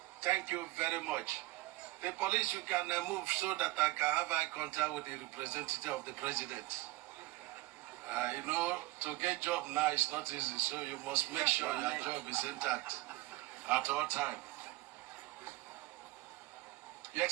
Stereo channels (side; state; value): left; quieter; 20.1 dB